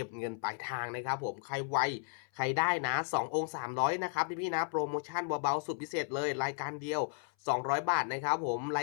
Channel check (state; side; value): silent; right; 55 dB below the other